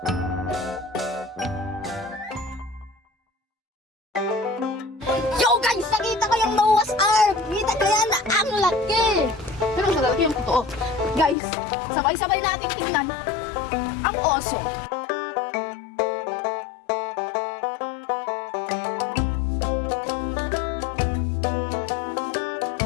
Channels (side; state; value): right; drops out; at 11.4 s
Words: Yo guys, nakita ko yung Noah's Ark. Kita ko yan, ang laki. Pero sa laki yung totoo. Guys, sabay-sabay natin tingnan ang oso.